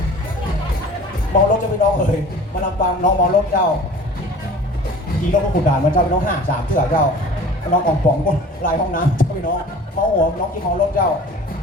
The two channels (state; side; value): normal; both; correlation 0.44